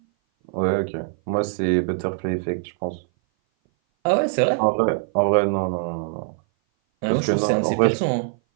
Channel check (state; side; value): silent; left; 58 dB below the other